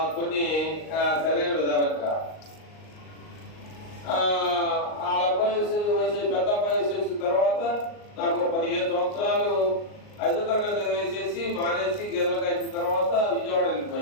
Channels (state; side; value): late; right; 38 ms